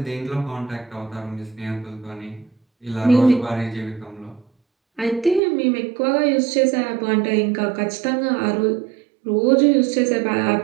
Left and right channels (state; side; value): drops out; left; at 5.4 s